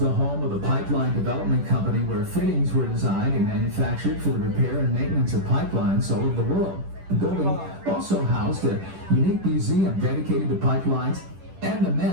home of the Pipeline Development Company, where fittings were designed and manufactured for the repair and maintenance of pipelines all over the world. The building also housed a unique museum dedicated to pipelines and the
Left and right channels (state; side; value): late; left; 10 ms